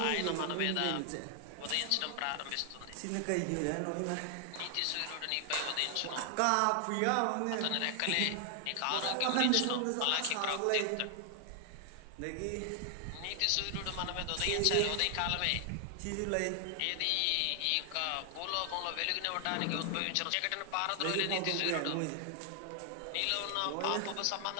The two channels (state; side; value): different; both; correlation 0.00